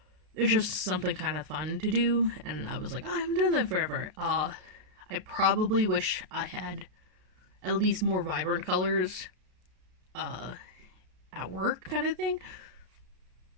It's just something kind of fun to do, and I was like, oh, I haven't done that forever. I probably wish I had at least more vibrant colors at work kind of thing.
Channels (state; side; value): late; left; 33 ms